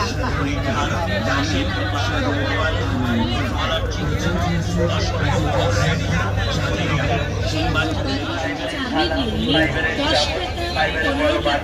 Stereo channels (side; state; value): both; identical; correlation 1.00